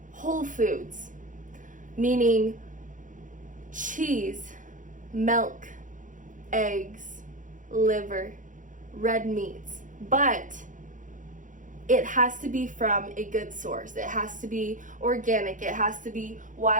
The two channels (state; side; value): late; left; 0.38 ms